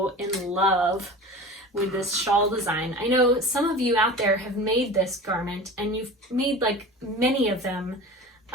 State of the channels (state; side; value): normal; both; correlation 0.35